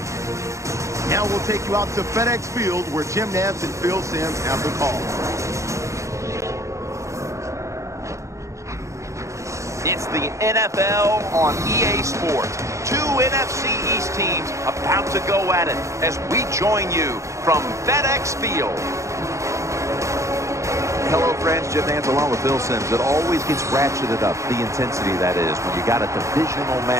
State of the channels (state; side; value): late; left; 0.15 ms